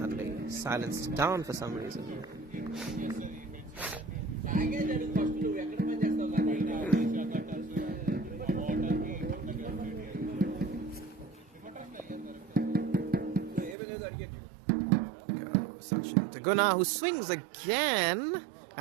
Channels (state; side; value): drops out; left; at 13.8 s